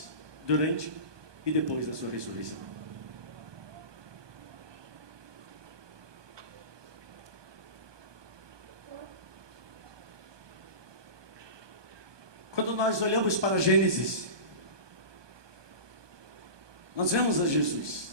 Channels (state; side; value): late; left; 1.2 ms